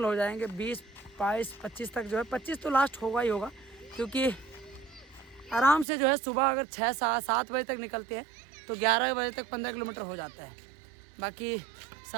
हो जाएंगे। 20, 22, 25 तक जो है, 25 तो लास्ट होगा ही होगा, क्योंकि आराम से जो है सुबह अगर 6-7 बजे तक निकलते हैं तो 11 बजे तक 15 किलोमीटर हो जाता है। बाकी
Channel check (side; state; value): left; drops out; at 5.9 s